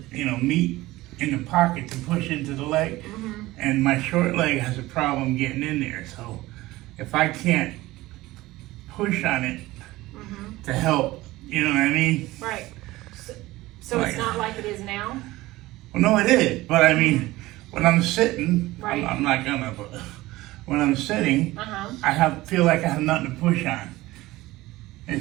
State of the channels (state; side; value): quieter; left; 18.3 dB